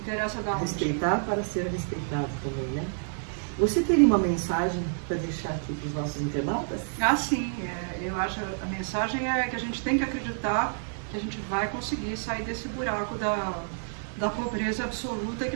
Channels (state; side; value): silent; left; 59 dB below the other